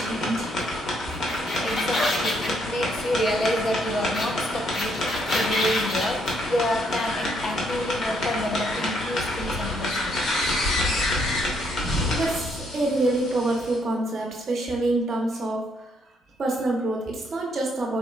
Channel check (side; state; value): both; normal; correlation 0.72